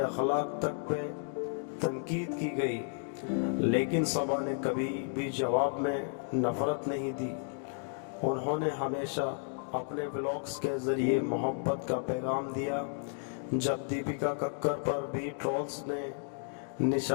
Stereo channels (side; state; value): right; silent; 56 dB below the other